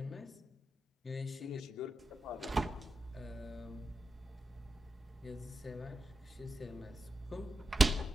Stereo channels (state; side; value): normal; both; correlation 0.89